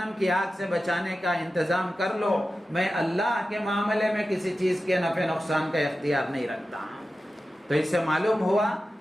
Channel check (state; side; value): normal; both; correlation 0.93